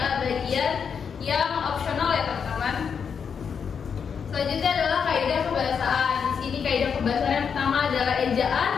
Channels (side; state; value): right; quieter; 6.7 dB